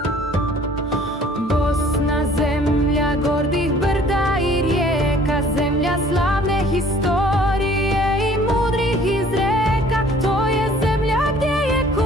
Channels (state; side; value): normal; both; correlation 0.54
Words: Bosna, zemlja gordih brda i rijeka, zemlja slavne historije i mudrih izreka. To je zemlja gdje je